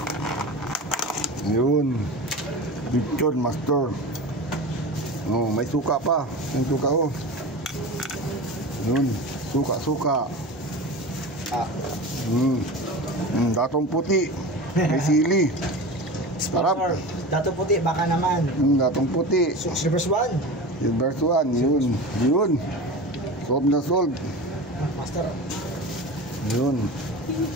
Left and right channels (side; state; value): both; normal; correlation 0.30